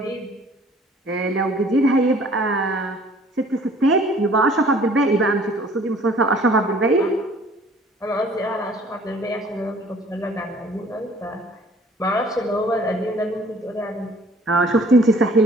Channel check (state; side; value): normal; both; correlation 0.54